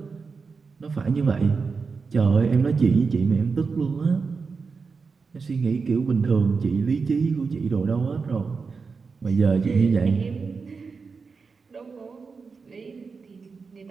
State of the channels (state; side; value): quieter; left; 4.9 dB